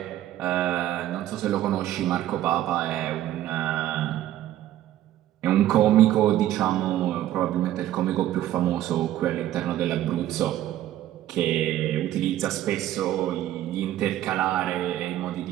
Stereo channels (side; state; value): left; quieter; 13.2 dB